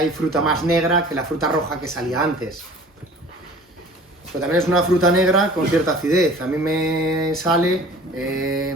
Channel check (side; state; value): both; normal; correlation 0.46